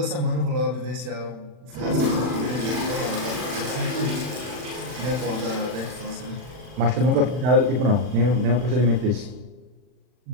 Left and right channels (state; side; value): late; left; 40 ms